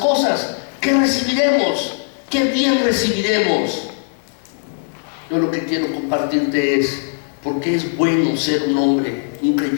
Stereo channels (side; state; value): right; silent; 67 dB below the other